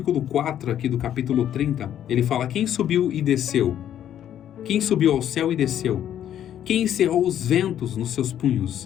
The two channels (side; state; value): right; quieter; 10.6 dB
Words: 4 aqui do capítulo 30, ele fala, quem subiu e desceu? Quem subiu ao céu e desceu? Quem encerrou os ventos nos seus punhos?